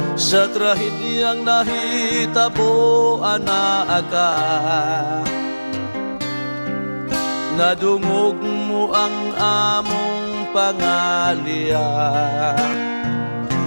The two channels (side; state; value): both; inverted; correlation -1.00